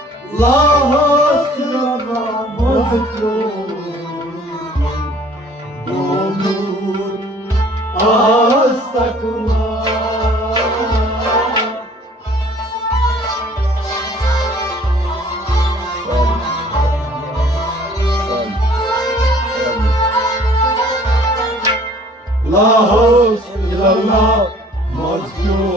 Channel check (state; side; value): normal; both; correlation 0.54